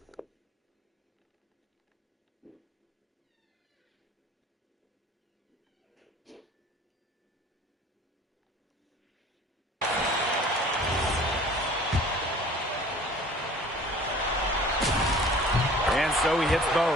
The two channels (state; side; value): normal; both; correlation 0.48